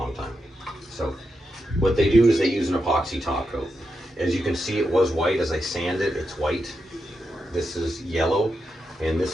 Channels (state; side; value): normal; both; correlation 0.86